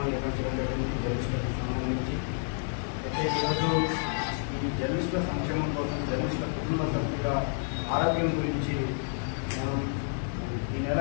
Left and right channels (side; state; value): right; silent; 58 dB below the other